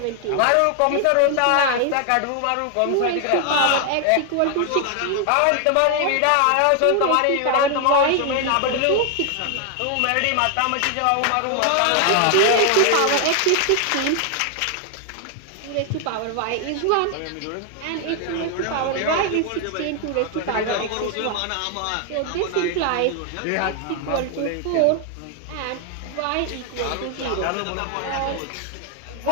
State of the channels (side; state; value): both; different; correlation 0.00